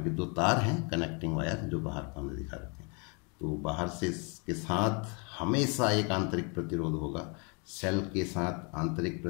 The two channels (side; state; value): right; quieter; 34.0 dB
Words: दो तार हैं कनेक्टिंग वायर जो बाहर को हमने दिखा रखे हैं। तो बाहर से इसके साथ हमेशा एक आंतरिक प्रतिरोध होगा। सेल के साथ आंतरिक